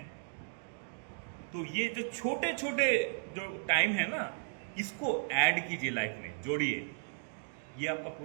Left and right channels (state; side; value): silent; left; digital silence